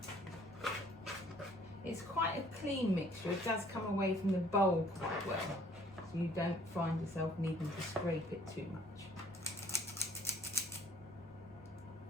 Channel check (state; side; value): normal; both; correlation 0.57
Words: It's quite a clean mixture. It does come away from the bowl quite well, so you don't find yourself needing to scrape it too much.